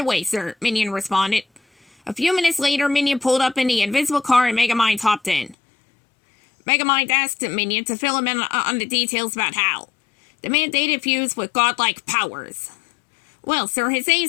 away, sir, Minion responded. A few minutes later, Minion pulled up in the invisible car and Megamind hopped in. Megamind asked Minion to fill him in on the details about Hal. The man dated fused with godlike powers. Well, sir, his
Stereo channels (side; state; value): right; drops out; at 5.6 s